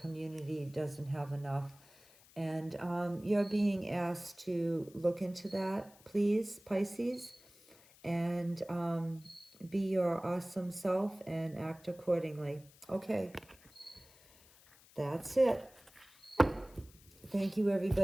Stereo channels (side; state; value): left; noise; hiss, 25 dB below the sound